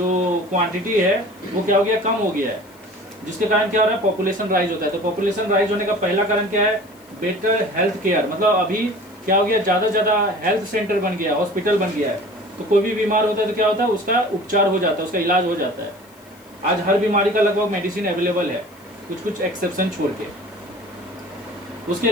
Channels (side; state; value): left; noise; hiss, 27 dB below the sound